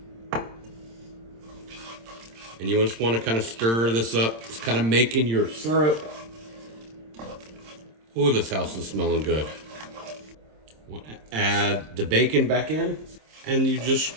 And you just want to kind of stir this up. It's kind of making your syrup. Oh, this house is smelling good. Want to add the bacon back in. And you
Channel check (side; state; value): left; late; 26 ms